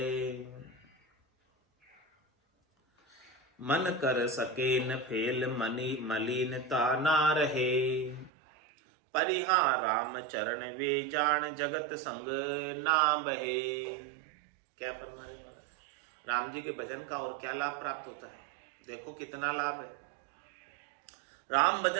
मन कर सके न फेल मनी मलिनता ना रहे, परिहा राम चरण वे जान जगत संग ना बहे। क्या फरमा रहे महाराज? राम जी के भजन का और क्या लाभ प्राप्त होता है? देखो कितना लाभ है। राम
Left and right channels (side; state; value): left; drops out; at 8.3 s